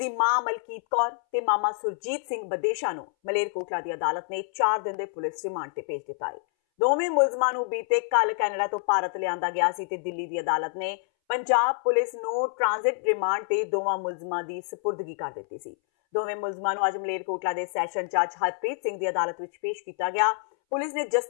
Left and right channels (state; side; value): silent; right; 60 dB below the other